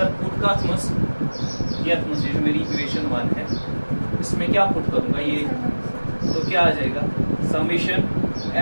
पुट का थमस, ये जो मेरी इक्वेशन 1 है, इसमें क्या पुट करूंगा, ये तो क्या आ जाएगा, समेशन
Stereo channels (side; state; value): both; inverted; correlation -1.00